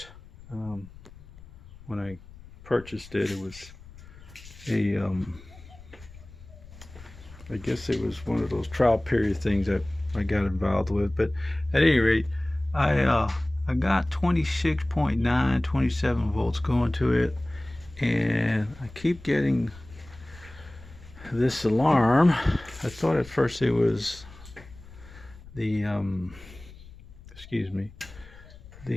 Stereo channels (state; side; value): noise; left; rumble, 19 dB below the sound